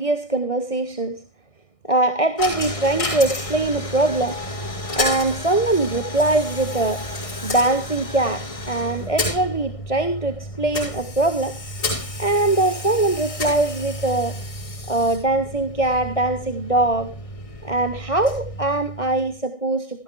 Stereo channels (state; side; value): late; right; 1.6 ms